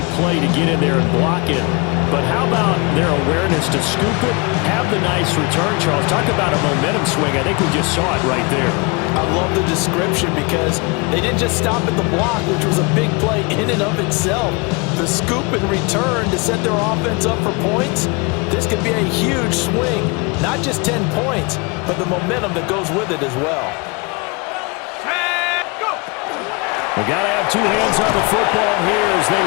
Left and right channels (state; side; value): quieter; right; 29.2 dB